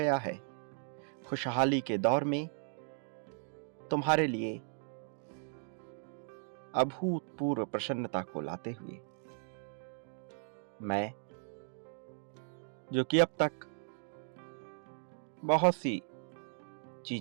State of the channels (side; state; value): left; silent; 53 dB below the other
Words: है खुशहाली के दौर में तुम्हारे लिए अभूतपूर्व प्रसन्नता को लाते हुए। मैं, जो कि अब तक बहुत सी